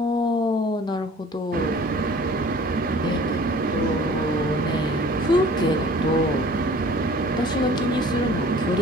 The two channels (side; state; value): both; normal; correlation 0.48